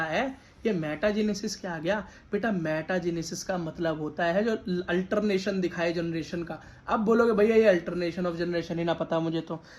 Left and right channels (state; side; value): identical; both; correlation 1.00